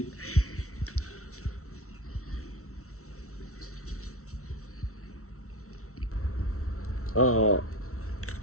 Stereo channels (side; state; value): right; late; 0.63 ms